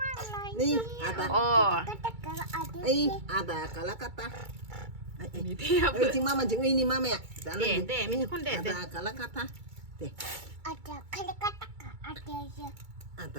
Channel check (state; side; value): late; left; 2.3 ms